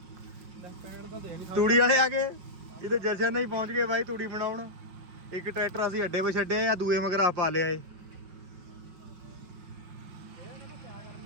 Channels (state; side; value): late; left; 5.4 ms